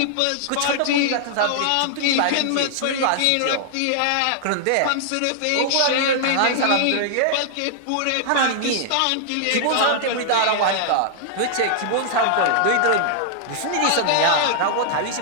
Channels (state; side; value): different; both; correlation -0.01